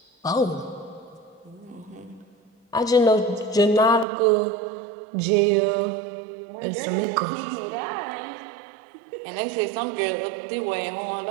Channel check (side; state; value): left; drops out; at 4.0 s